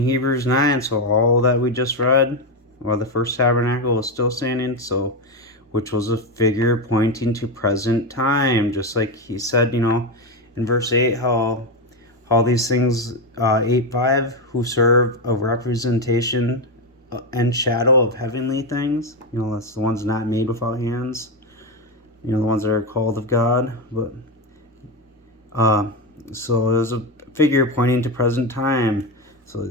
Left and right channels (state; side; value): normal; both; correlation 0.11